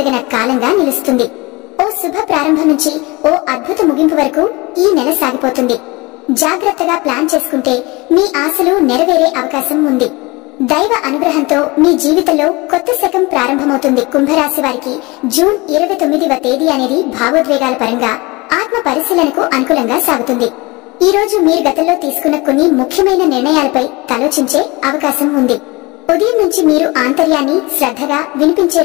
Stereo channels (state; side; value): quieter; right; 24.1 dB